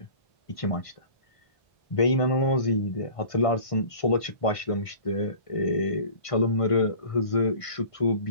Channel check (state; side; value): late; right; 1.5 ms